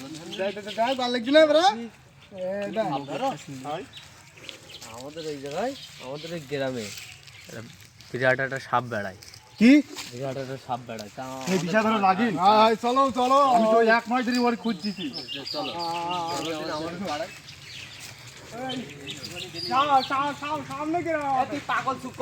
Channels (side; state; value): both; identical; correlation 1.00